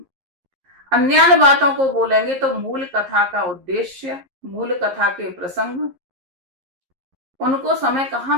अन्यान्य बातों को बोलेंगे तो मूल कथा का उद्देश्य, मूल कथा के प्रसंग, उनको समय कहाँ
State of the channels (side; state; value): left; late; 11 ms